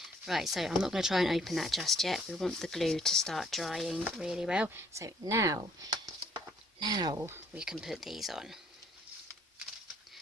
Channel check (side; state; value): both; normal; correlation 0.62